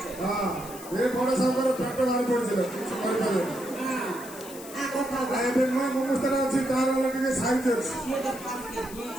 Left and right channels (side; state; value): left; noise; hiss, 15 dB below the sound